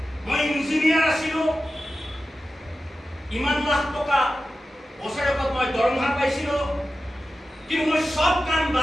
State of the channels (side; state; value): both; normal; correlation 0.93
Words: মই ইঞ্জিনিয়াৰ আছিলো ইমান লাখ টকা বছৰেকত মই দৰমহা পাইছিলো কিন্তু মই সব কাম